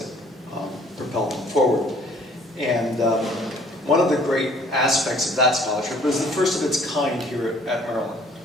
propel them forward. And one of the great aspects of that scholarship was the first of its kind here at Maryland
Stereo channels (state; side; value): normal; both; correlation 0.57